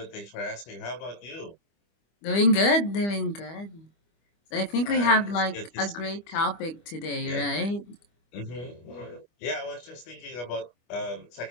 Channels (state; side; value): late; right; 25 ms